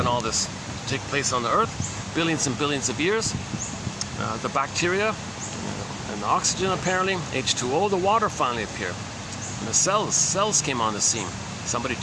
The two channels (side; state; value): both; identical; correlation 1.00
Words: all this to take place on the Earth. Billions and billions of years. The bacteria and the oxygen, apparently, H2O, the water finally appeared. And the cells came on the scene. Somebody